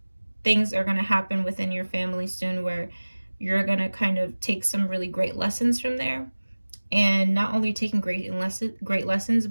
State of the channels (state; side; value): inverted; both; correlation -1.00